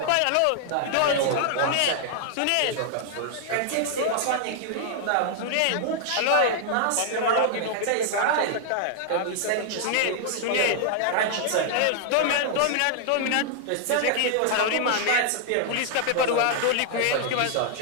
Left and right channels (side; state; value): both; different; correlation 0.00